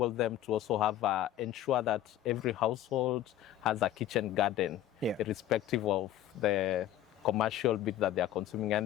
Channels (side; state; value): right; quieter; 12.1 dB